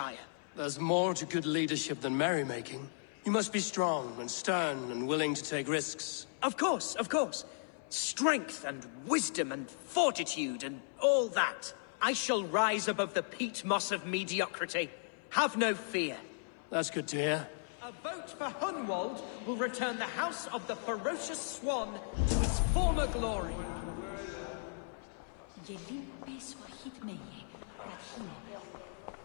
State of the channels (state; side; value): silent; right; 54 dB below the other